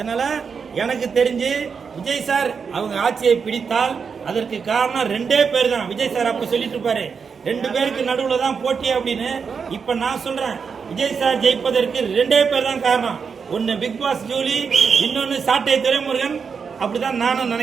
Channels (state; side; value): quieter; left; 5.9 dB